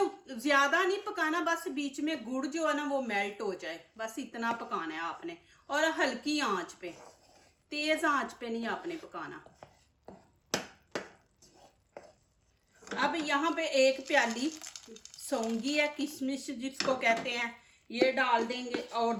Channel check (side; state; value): both; identical; correlation 1.00